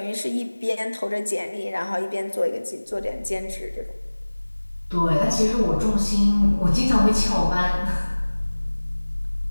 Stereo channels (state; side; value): inverted; both; correlation -1.00